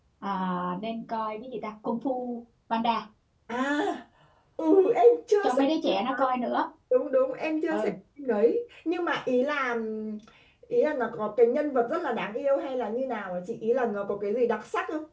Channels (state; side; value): identical; both; correlation 1.00